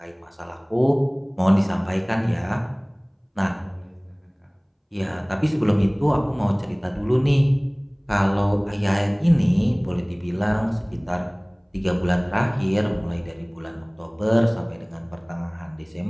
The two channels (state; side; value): identical; both; correlation 1.00